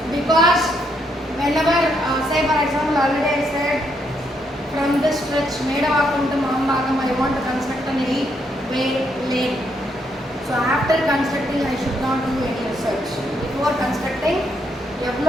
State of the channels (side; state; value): both; normal; correlation 0.75